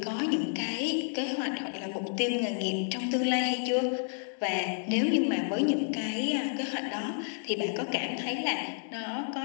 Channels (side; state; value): right; silent; 57 dB below the other